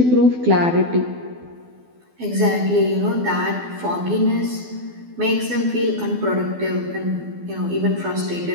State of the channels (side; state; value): left; late; 12 ms